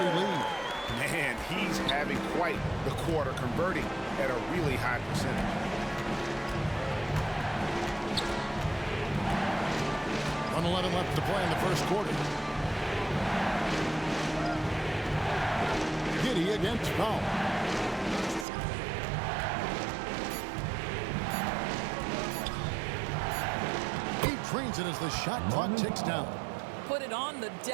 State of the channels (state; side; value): drops out; left; at 18.4 s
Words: lead. Man, he's having quite the quarter, converting at a really high percentage. 1:11 left to play in the first quarter. Giddey against Powell. He trains it as the shot clock ticks down. Put it on the